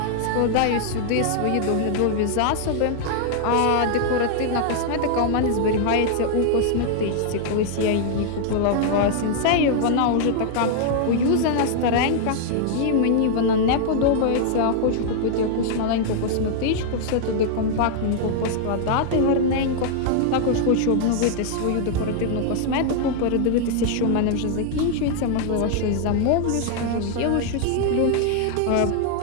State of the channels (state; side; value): different; both; correlation 0.00